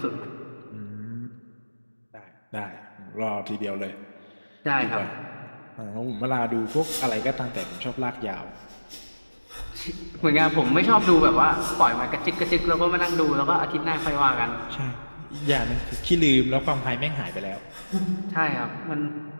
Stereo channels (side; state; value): both; inverted; correlation -1.00